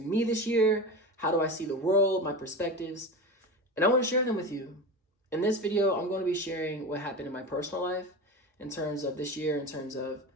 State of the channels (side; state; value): both; normal; correlation 0.26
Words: this year? How do I see the world, my perspectives? And I want to share them with you. In this video, I'm going to be sharing what happened in my personal life in terms of this year, in terms of